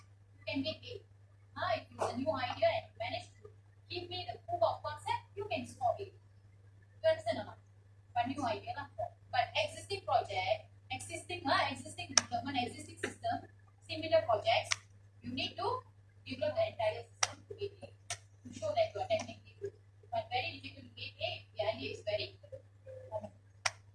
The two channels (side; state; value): both; identical; correlation 1.00